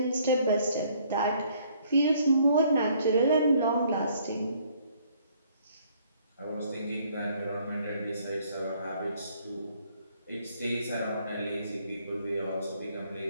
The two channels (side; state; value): both; inverted; correlation -0.63